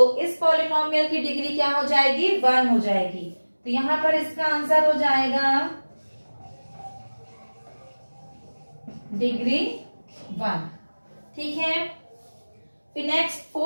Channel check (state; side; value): inverted; both; correlation -1.00